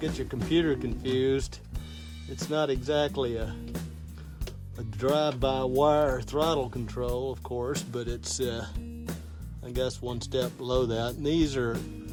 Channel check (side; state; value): both; identical; correlation 1.00